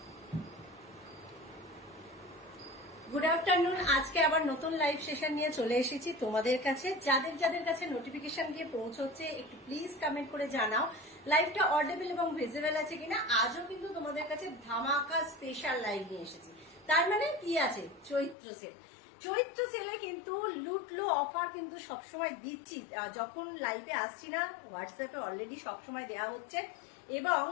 Good afternoon. আজকে আবার নতুন লাইভ সেশন নিয়ে চলে এসেছি তোমাদের কাছে। যাদের যাদের কাছে নোটিফিকেশন গিয়ে পৌঁছচ্ছে একটু প্লিজ কমেন্ট করে জানাও লাইভটা অডিবল এবং ভিজিবল আছে কিনা। আজও কিন্তু তোমাদের কাছে ধামাকা স্পেশাল লাইভ নিয়ে এসেছি। তার মানে কি আছে, চৈত্র সেল। চৈত্র সেলে কিন্তু লুটলো অফার কিন্তু সবসময় দিচ্ছি। যখন লাইভে আসছি না, হোয়াটসঅ্যাপে অলরেডি সবসময় দেওয়া হচ্ছে এবং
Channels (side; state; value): right; drops out; at 18.4 s